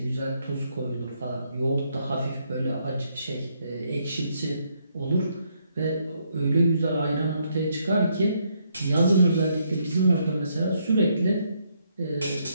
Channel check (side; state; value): both; inverted; correlation -0.74